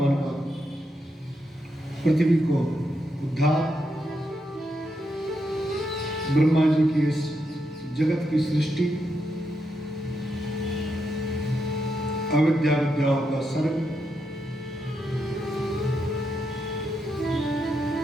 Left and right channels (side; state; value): both; normal; correlation 0.82